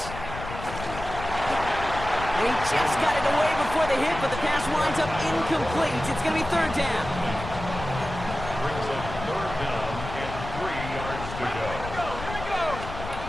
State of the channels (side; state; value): left; noise; rumble, 9 dB below the sound